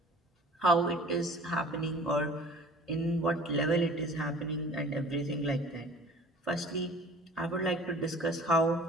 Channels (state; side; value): normal; both; correlation 0.46